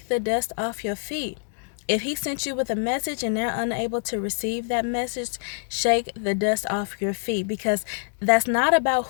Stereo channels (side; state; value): right; silent; digital silence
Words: the dust off your feet. If he sent you with a message and they're unable to receive that message, shake the dust off your feet, because that's not about